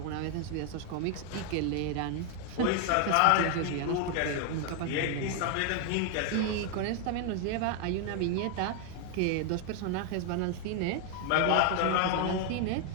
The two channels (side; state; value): both; different; correlation 0.01